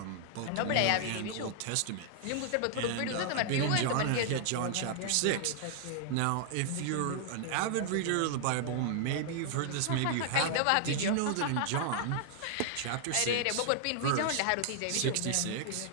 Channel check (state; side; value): different; both; correlation -0.01